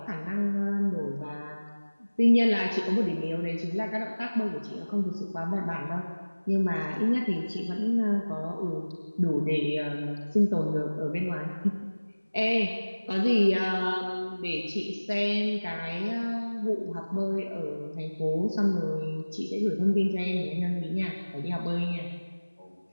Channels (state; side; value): inverted; both; correlation -1.00